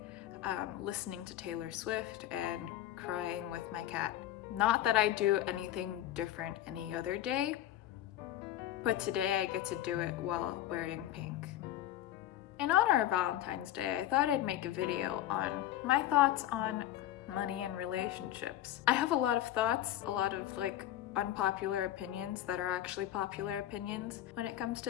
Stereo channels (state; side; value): quieter; right; 12.9 dB